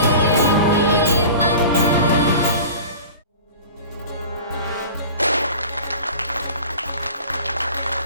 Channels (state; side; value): inverted; both; correlation -0.39